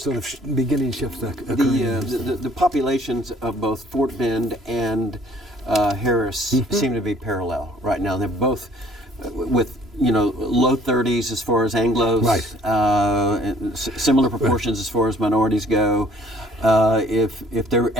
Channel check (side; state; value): both; normal; correlation 0.58